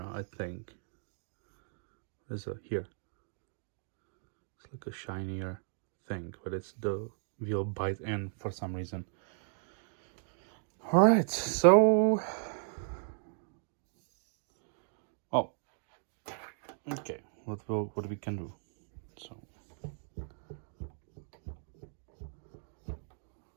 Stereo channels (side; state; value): left; silent; 54 dB below the other